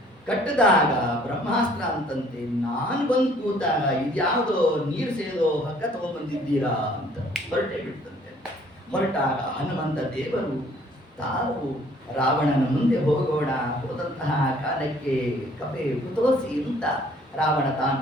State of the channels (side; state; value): both; normal; correlation 0.58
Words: ಕಟ್ಟಿದಾಗ ಬ್ರಹ್ಮಾಸ್ತ್ರ ಅಂತಂತೆ, ನಾನು ಬಂದು ಕೂತಾಗ ಇದ್ಯಾವುದೋ ನೀರು ಸೇದೋ ಹಗ್ಗ ತಗೊಂಡ್ಬಂದಿದ್ದೀರಾ ಅಂತ ಹೊರಟೇ ಬಿಡ್ತಂತೆ. ಹೊರಟಾಗ ಹನುಮಂತ ದೇವರು ತಾವು ರಾವಣನ ಮುಂದೆ ಹೋಗೋಣ, ಹೋದಂತಹ ಕಾಲಕ್ಕೆ ಕಪೆ ಕುತೋಸಿ ಅಂತ ರಾವಣ ತಾನು